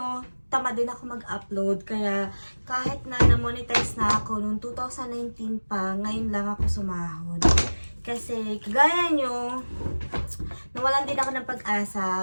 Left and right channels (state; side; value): inverted; both; correlation -1.00